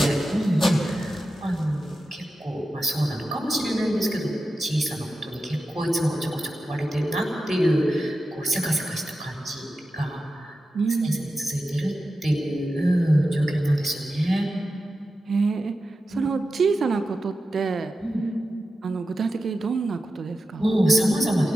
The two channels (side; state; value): both; normal; correlation 0.92